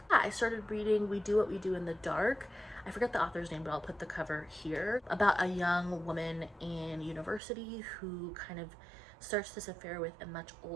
I started reading We Do What We Do in the Dark. I forget the author's name, but I'll put the cover here, about a young woman in university who kind of starts this affair with a much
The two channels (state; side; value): drops out; left; at 7.4 s